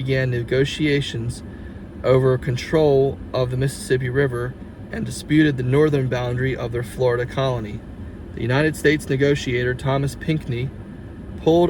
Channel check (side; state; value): both; identical; correlation 1.00